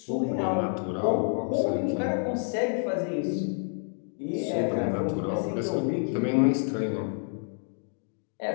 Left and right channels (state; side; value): silent; right; 59 dB below the other